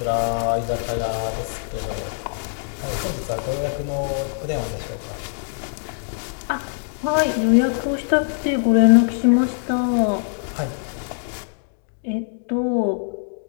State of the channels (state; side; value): silent; right; digital silence